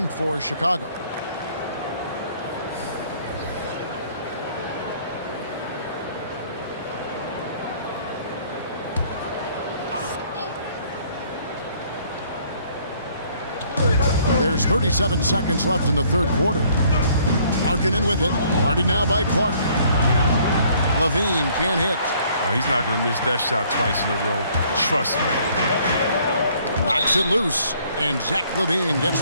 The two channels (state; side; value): inverted; both; correlation -0.61